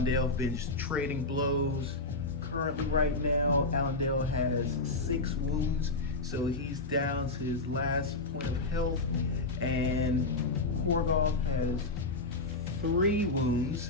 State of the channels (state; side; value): quieter; right; 3.2 dB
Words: have been just trading blows. Currently right now, Allendale has 6 wounds, so he's down to his last point of health, and Korgoth has 3 wounds,